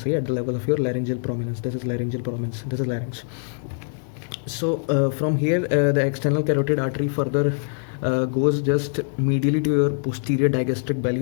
at the level of your laryngeal prominence. This is laryngeal prominence, this is larynx. So from here the external carotid artery further goes just medially to your posterior digastric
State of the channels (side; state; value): right; silent; digital silence